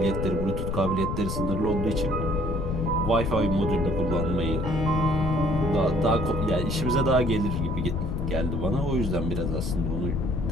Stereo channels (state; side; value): noise; left; rumble, 2 dB below the sound